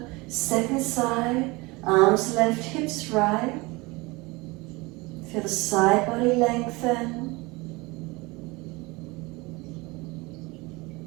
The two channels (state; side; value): quieter; left; 24.1 dB